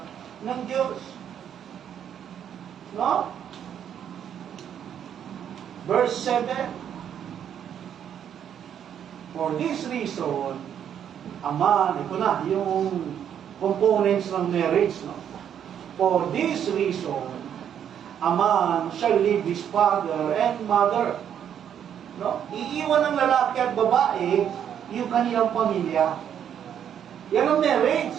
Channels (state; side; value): quieter; left; 9.1 dB